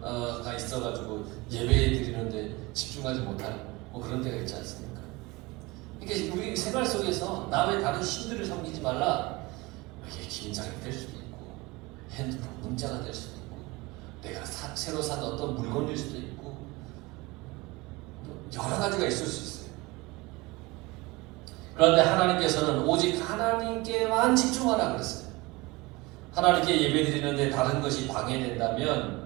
있어가지고 예배에 드리는데 집중하지 못하는 그런 때가 있지 않습니까? 그러니까 우리 생활 속에서 남의 다른 신들을 섬기지 말라. 이게 긴장이 될 수도 있고 핸드폰 문자가 될 수도 있고 내가 새로 산 어떤 물건일 수도 있고 여러 가지가 있을 수 있어요. 그런데 하나님께서는 오직 하나님께만 집중하라 그랬어요. 하나님께 예배드리는데 다른 것이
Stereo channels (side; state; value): left; quieter; 22.6 dB